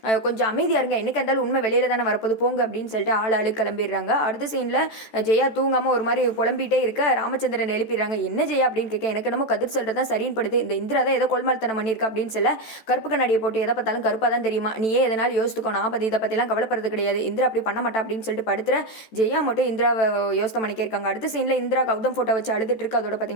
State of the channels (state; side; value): late; right; 14 ms